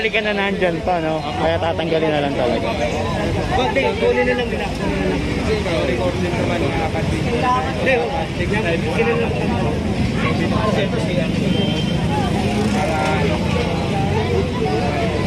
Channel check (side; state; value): both; identical; correlation 1.00